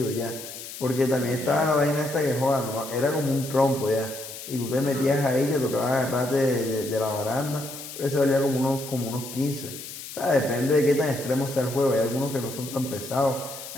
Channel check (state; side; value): noise; left; hiss, 11 dB below the sound